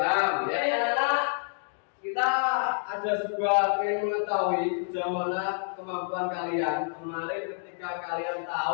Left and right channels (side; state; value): right; silent; 59 dB below the other